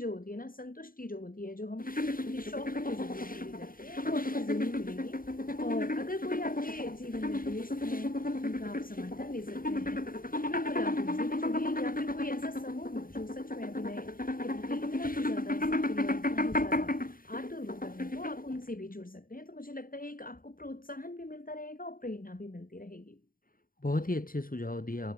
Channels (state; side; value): late; right; 0.41 ms